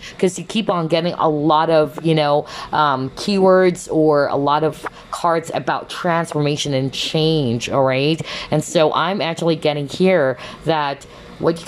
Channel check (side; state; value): both; identical; correlation 1.00